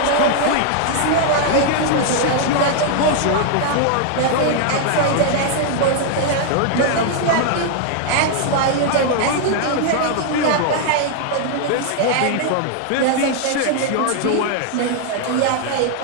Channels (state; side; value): different; both; correlation 0.00